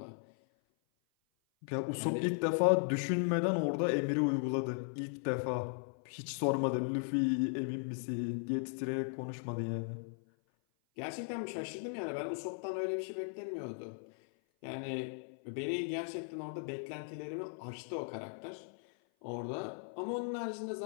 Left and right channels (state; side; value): silent; right; 53 dB below the other